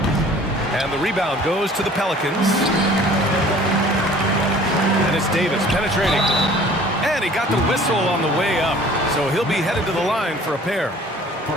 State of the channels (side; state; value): both; normal; correlation 0.50